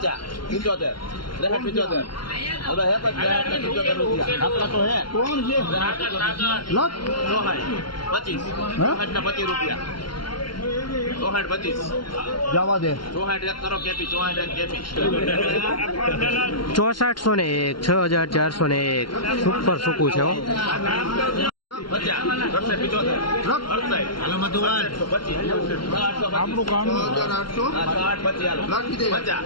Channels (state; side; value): late; right; 0.73 ms